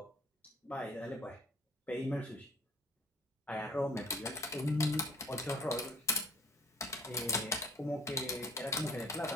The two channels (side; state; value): both; normal; correlation 0.54